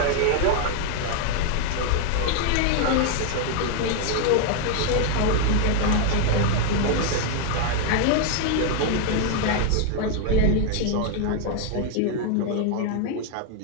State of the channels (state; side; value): different; both; correlation 0.00